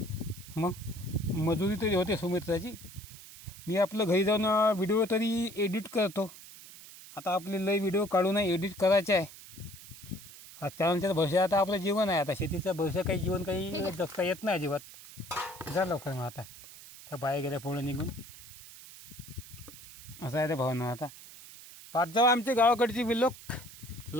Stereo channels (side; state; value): right; noise; hiss, 17 dB below the sound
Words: मग मजुरी तरी होते सुमित्राची. मी आपलं घरी जाऊन व्हिडिओ तरी एडिट करतो. आता आपले लय व्हिडिओ काढून एडिट करायचे आहे. हा चॅनलच्या भविष्य आता आपलं जीवन आहे. आता शेतीचं भविष्य काही जीवन काही जगता येत नाही अजिबात. जा लवकर मग आता त्या बाया गेल्या पुढं निघून. असं आहे ते भावना. आता पाच जाऊ आमचे गावाकडची व्हिडिओ.